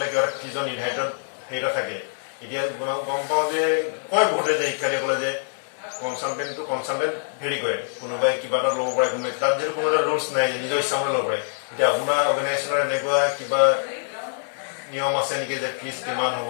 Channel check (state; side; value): silent; right; digital silence